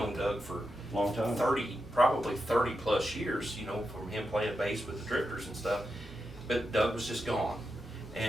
Doug for Long time. probably 30 plus years, you know, from him playing bass with the Drifters and stuff. But Doug was just gone,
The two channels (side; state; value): right; noise; hum, 22 dB below the sound